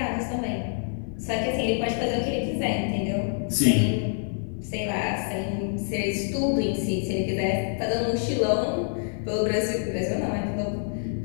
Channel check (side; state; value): right; silent; digital silence